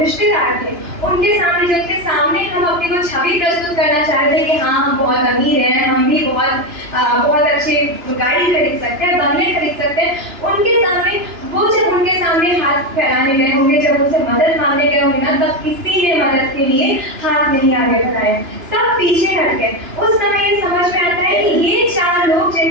थे, उनके सामने, जिनके सामने हम अपनी वो छवि प्रस्तुत करना चाहते हैं कि हाँ हम बहुत अमीर हैं, हम भी बहुत अच्छी गाड़ी खरीद सकते हैं, बंगले खरीद सकते हैं, उनके सामने वो जब उनके सामने हाथ फैलाने गए होंगे, जब उनसे मदद मांगने गए होंगे ना, तब किसी ने मदद के लिए हाथ नहीं आगे बढ़ाया, सब पीछे हट गए। उस समय ये समझ में आता है कि ये 4 लोग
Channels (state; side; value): late; left; 2.9 ms